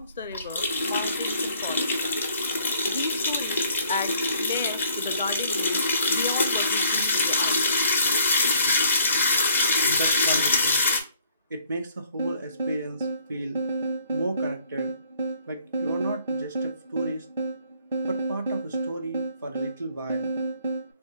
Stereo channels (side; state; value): both; inverted; correlation -0.61